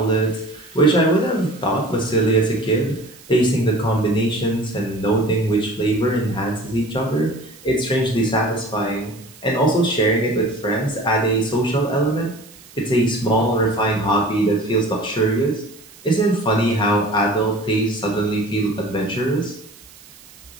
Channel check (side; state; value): right; noise; hiss, 23 dB below the sound